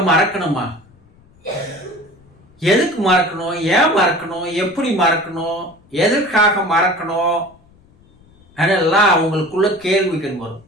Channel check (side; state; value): left; noise; rumble, 30 dB below the sound